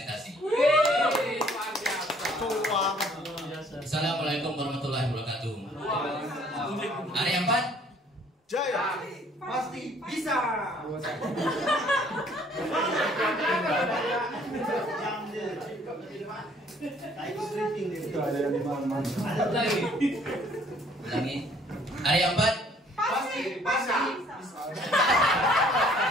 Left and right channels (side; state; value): both; normal; correlation 0.60